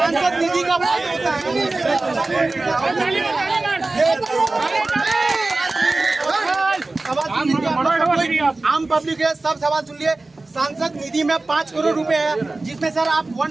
निधि का बात होता है। आम पब्लिक है, सब सवाल सुन लिए। सांसद निधि में 5 करोड़ रुपए है, जिसमें सर आप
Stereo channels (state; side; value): quieter; left; 3.2 dB